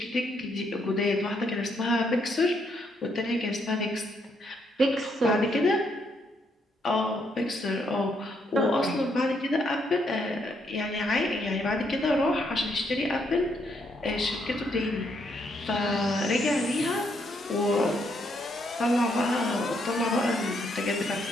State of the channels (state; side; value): normal; both; correlation 0.74